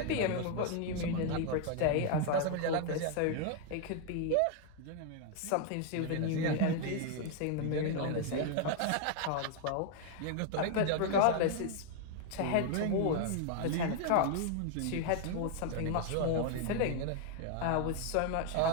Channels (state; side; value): different; both; correlation 0.00